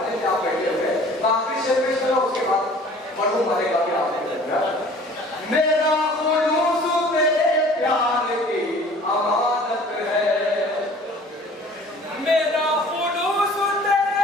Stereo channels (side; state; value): both; normal; correlation 0.49